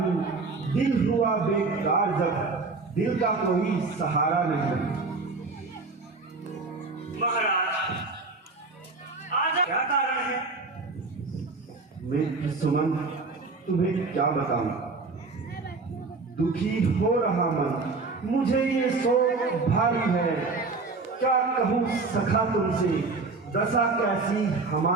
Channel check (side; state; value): left; quieter; 3.9 dB